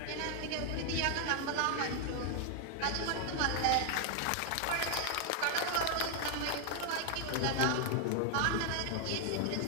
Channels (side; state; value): both; different; correlation 0.00